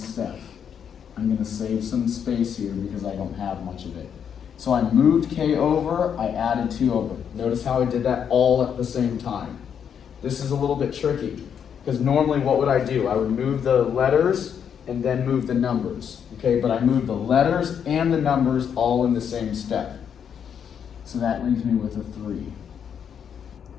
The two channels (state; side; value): quieter; right; 7.9 dB